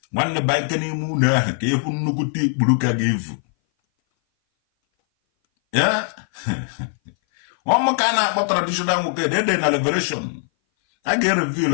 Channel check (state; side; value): silent; right; 59 dB below the other